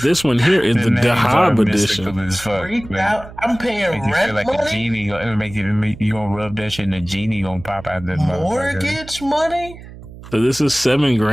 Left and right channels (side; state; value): right; noise; hum, 16 dB below the sound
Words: this one here is the Dahab edition. I'm paying rent like money? A genie, you gonna rub that shit and the genie gonna pop out the mortgage money? So this is